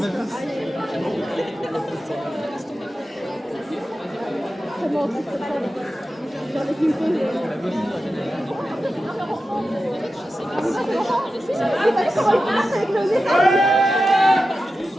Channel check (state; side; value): normal; both; correlation 0.92